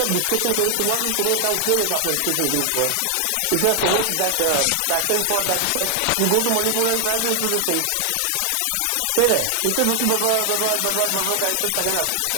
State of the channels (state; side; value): different; both; correlation 0.00